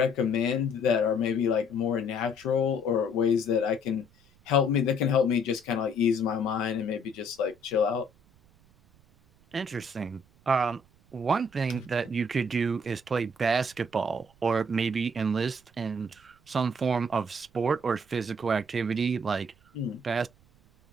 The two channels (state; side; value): noise; right; rumble, 30 dB below the sound